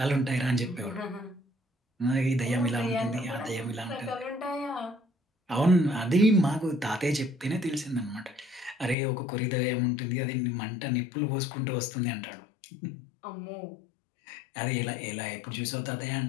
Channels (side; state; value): right; drops out; at 9.0 s